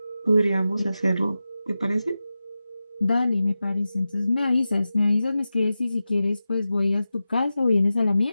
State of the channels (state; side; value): inverted; both; correlation -0.93